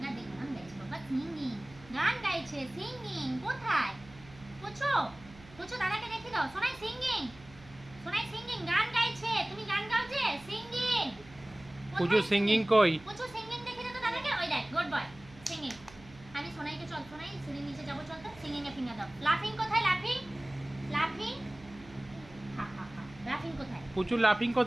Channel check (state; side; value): noise; right; hum, 21 dB below the sound